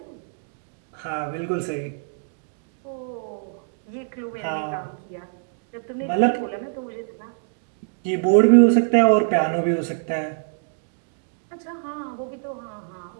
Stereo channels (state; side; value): silent; left; digital silence